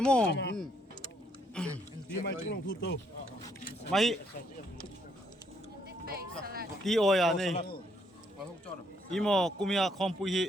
mo mai ti oya nei imo kumia khom pu hi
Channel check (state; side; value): normal; both; correlation 0.71